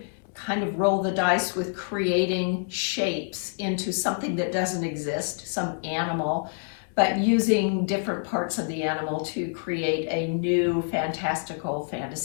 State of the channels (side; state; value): right; silent; digital silence